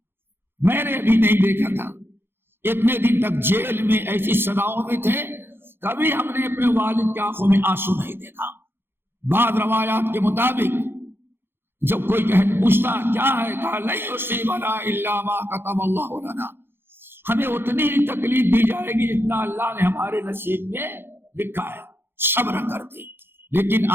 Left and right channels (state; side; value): late; left; 0.11 ms